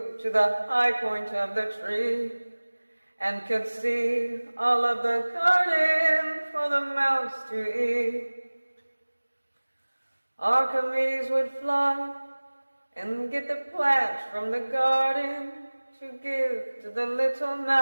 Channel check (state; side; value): inverted; both; correlation -1.00